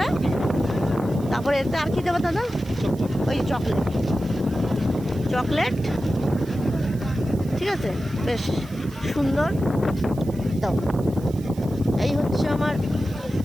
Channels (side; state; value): right; noise; hiss, 23 dB below the sound